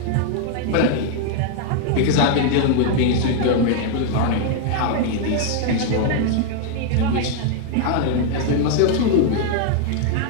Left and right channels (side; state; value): both; different; correlation 0.00